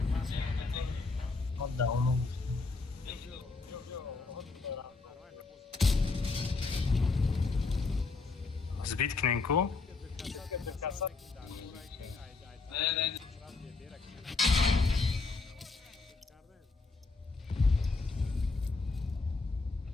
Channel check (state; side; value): quieter; right; 3.9 dB